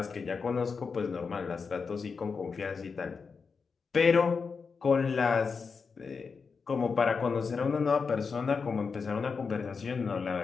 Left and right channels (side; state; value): right; quieter; 5.2 dB